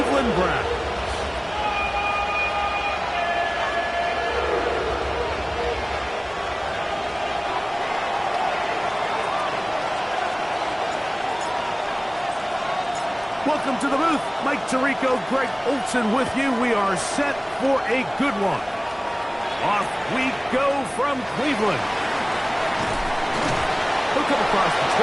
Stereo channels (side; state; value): both; identical; correlation 1.00